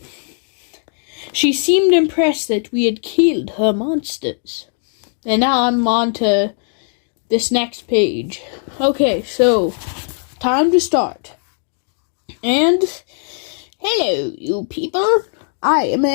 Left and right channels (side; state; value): right; silent; 57 dB below the other